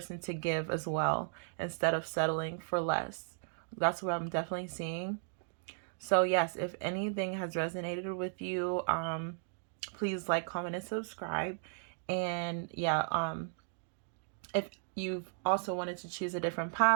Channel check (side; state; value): left; silent; digital silence